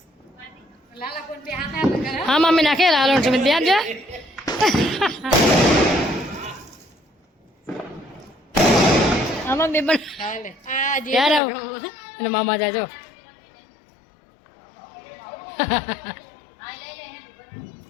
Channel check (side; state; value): right; drops out; at 11.4 s